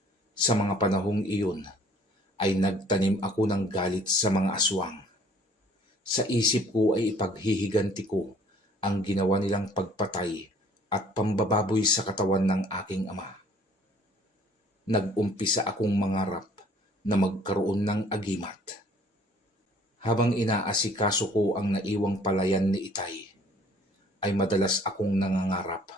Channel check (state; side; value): normal; both; correlation 0.56